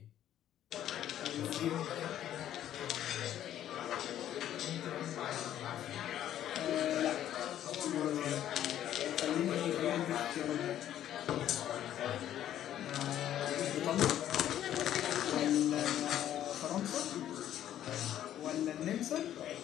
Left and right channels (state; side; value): quieter; right; 11.5 dB